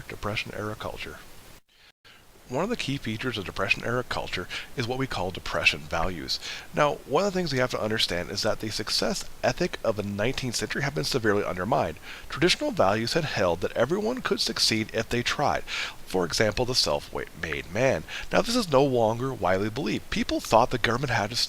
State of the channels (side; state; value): both; identical; correlation 1.00